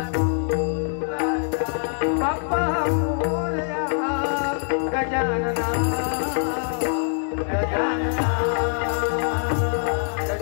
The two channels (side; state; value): right; silent; 63 dB below the other